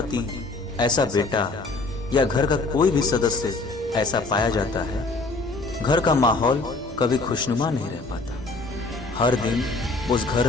ऐसा बेटा या घर का कोई भी सदस्य ऐसा पाया जाता है, घर का माहौल कभी खुशनुमा नहीं रह पाता। हर दिन उस घर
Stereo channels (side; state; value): right; quieter; 3.4 dB